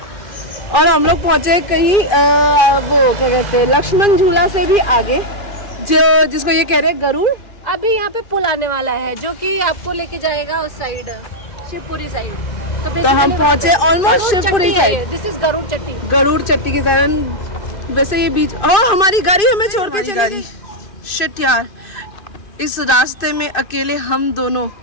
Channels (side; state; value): right; late; 2.5 ms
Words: और हम लोग पहुंचे कहीं वो क्या कहते हैं लक्ष्मण झूला से भी आगे, जो जिसको ये कह रहे हैं गरुड़. अभी यहाँ पे पुल आने वाला है जो कि आपको लेके जाएगा उस साइड शिवपुरी साइड. तो हम पहुंचे almost Shivpuri side. This is Garud Chatti के कारण. वैसे ये बीच हमारी गाड़ी हमें छोड़ के चली गई. शिट यार, इस रास्ते में अकेले हम दोनों